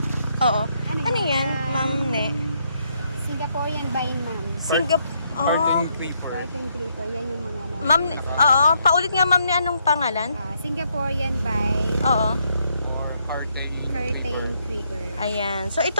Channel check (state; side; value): inverted; both; correlation -0.75